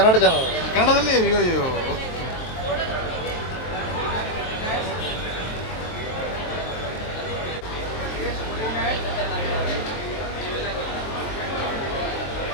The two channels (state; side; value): late; right; 23 ms